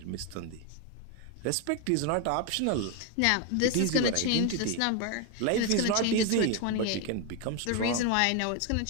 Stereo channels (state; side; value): different; both; correlation 0.01